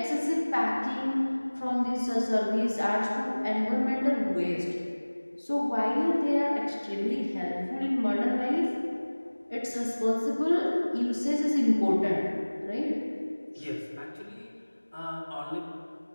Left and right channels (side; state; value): both; inverted; correlation -1.00